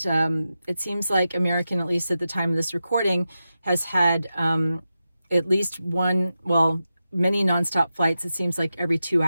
it seems like American, at least at the time of this recording, has had at least many nonstop flights. It seems like every 2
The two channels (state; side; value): inverted; both; correlation -0.91